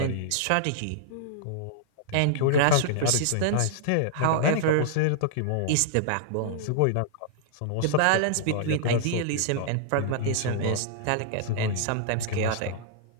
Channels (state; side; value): different; both; correlation -0.01